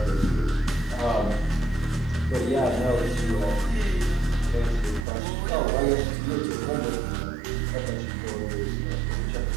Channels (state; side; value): drops out; left; at 5.1 s